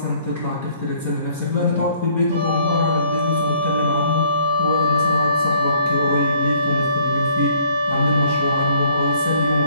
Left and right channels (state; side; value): inverted; both; correlation -0.61